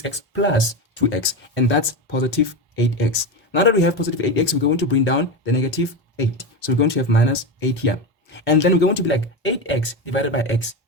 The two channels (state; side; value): normal; both; correlation 0.18